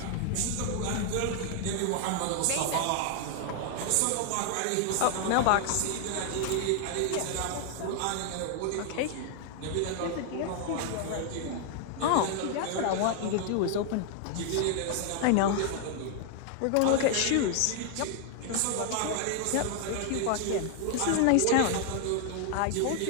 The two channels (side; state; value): both; different; correlation 0.00